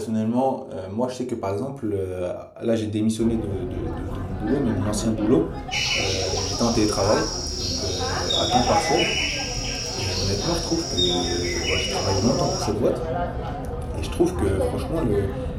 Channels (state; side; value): identical; both; correlation 1.00